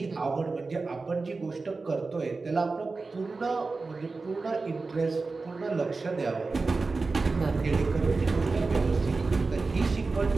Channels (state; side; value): quieter; left; 3.9 dB